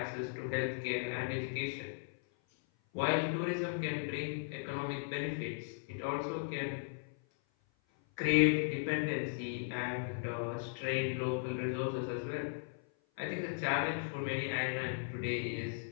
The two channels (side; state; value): right; silent; 53 dB below the other